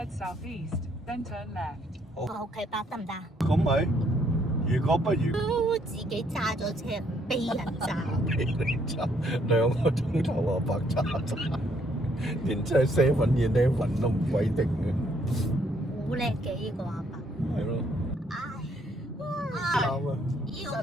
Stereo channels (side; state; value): both; normal; correlation 0.69